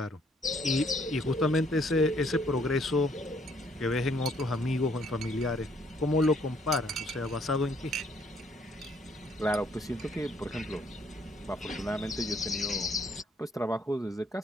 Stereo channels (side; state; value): both; normal; correlation 0.65